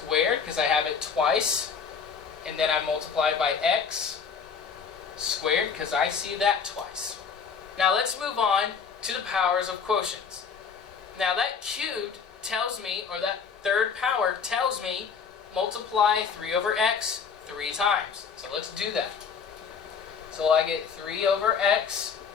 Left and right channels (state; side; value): quieter; right; 6.3 dB